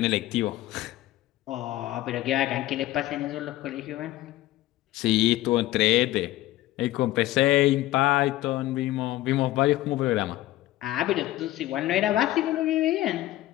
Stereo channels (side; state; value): right; quieter; 15.9 dB